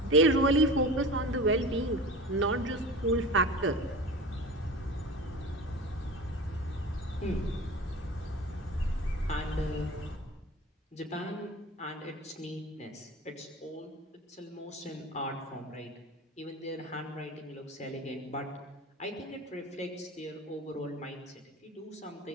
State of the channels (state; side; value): normal; both; correlation 0.34